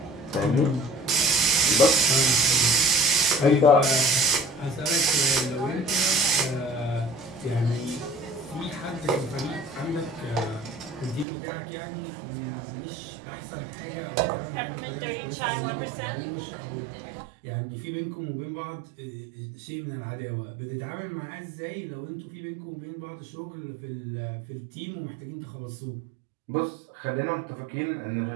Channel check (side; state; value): left; drops out; at 11.2 s